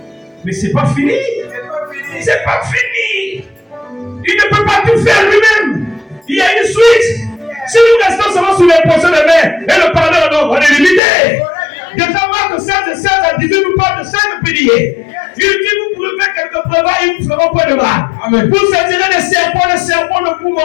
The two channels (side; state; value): right; drops out; at 11.0 s